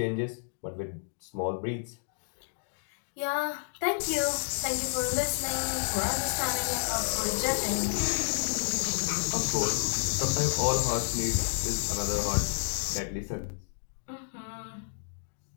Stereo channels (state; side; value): silent; right; digital silence